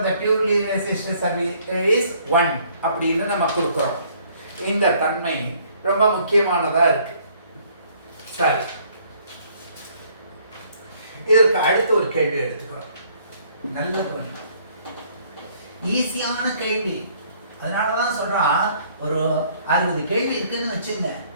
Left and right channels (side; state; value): both; inverted; correlation -0.62